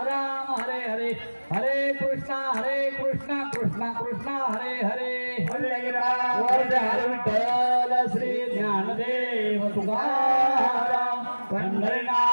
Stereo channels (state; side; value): inverted; both; correlation -1.00